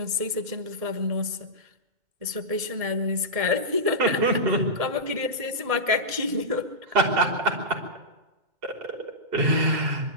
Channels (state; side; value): late; left; 1.7 ms